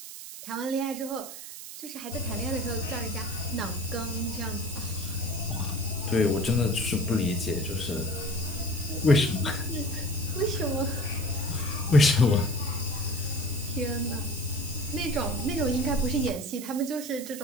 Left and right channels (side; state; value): right; noise; hiss, 11 dB below the sound